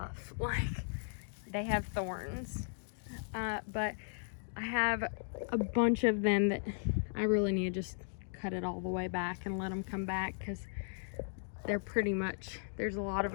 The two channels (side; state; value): right; silent; digital silence